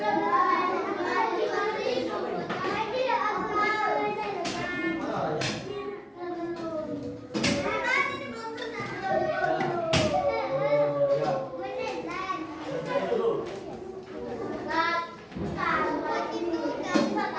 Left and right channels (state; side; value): identical; both; correlation 1.00